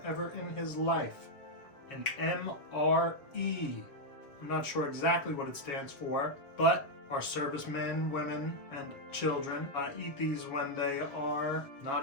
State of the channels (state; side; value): late; right; 6.9 ms